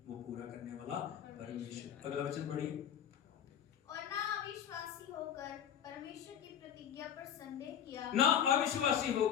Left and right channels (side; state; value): right; quieter; 9.2 dB